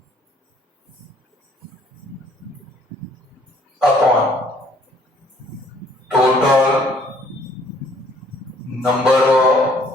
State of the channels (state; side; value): normal; both; correlation 0.61